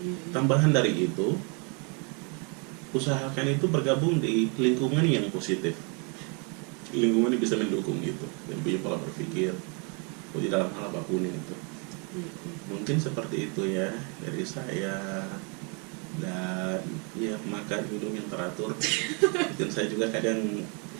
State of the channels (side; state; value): left; quieter; 35.0 dB